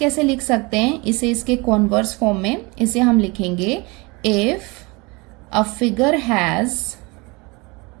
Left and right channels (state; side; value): quieter; left; 26.4 dB